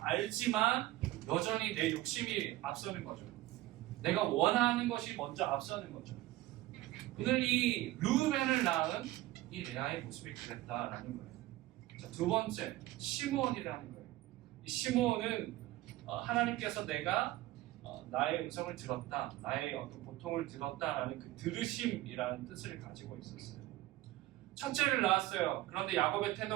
알지만 여전히 내 욕심이 앞서는 거죠. 내가 원하는 것이 먼저 앞서는 거죠. 오늘 이 르우벤을 낳은 이 레아의 모습이 그랬다라는 거예요. 자, 두 번째, 시므온이라는 거예요. 이 시므온은 하나님께서 내가 나의 음성을 들었다, 나의 어떤 고통을 들었다라는 그 들으심이라는 뜻을 가지고 있었어요. 첫째를 낳았어요. 그런데 야곱의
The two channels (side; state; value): left; quieter; 16.6 dB